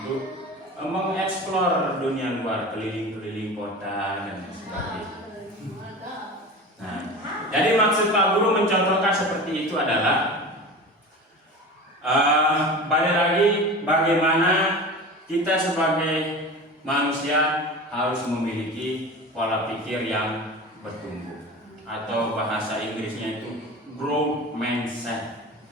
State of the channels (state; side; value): normal; both; correlation 0.32